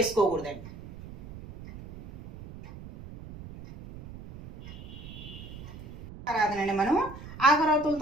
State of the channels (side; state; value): right; noise; rumble, 14 dB below the sound